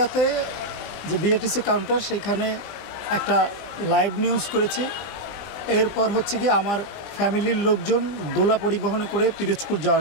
যে বিএটিসি কাউন্টার সেখানে একটা লাইভ নিউজ করেছি। এরপর হচ্ছে কি আমার ফ্যামিলির লোকজন দোলা পরিবহনে করে পিরোজপুর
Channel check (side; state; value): right; late; 20 ms